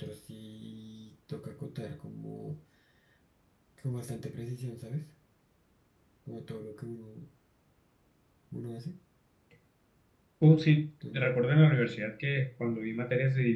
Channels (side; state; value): both; identical; correlation 1.00